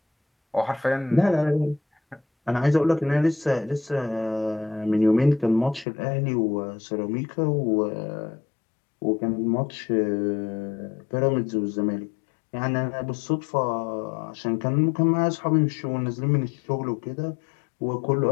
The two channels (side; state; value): right; drops out; at 5.9 s